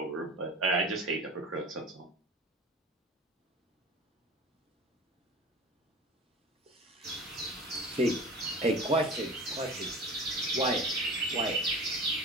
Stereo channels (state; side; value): normal; both; correlation 0.37